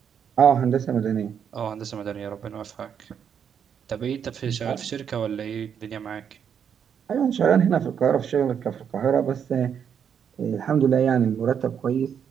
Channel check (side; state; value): left; quieter; 7.9 dB